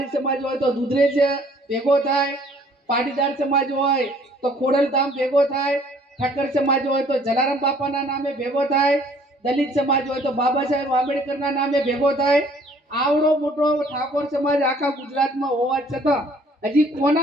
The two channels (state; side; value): normal; both; correlation 0.58